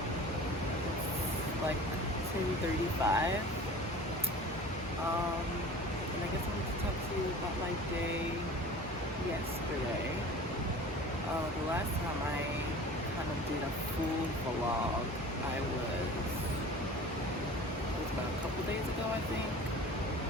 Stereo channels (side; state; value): both; normal; correlation 0.40